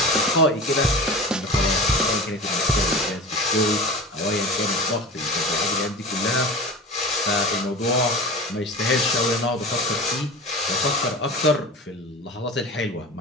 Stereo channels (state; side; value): normal; both; correlation 0.32